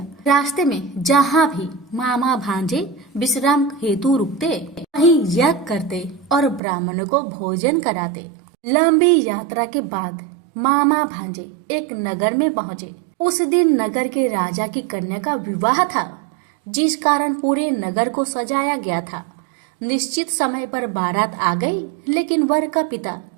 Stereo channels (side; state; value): left; drops out; at 6.6 s